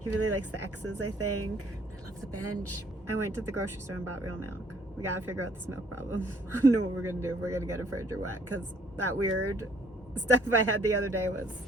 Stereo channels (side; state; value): both; normal; correlation 0.63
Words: really likes the X's, I think. I love the bench. I went to the grocery store and bought real milk. We got to figure out this milk problem. I don't know what we're going to do if we're going to get a fridge or what, because that weird stuff I had the other day was